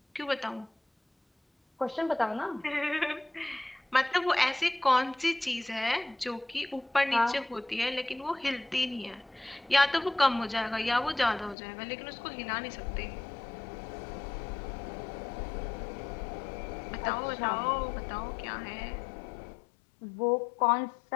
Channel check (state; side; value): drops out; right; at 11.6 s